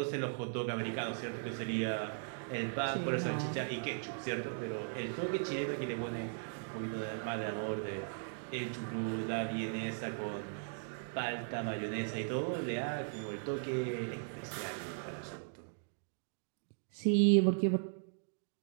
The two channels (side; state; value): left; silent; digital silence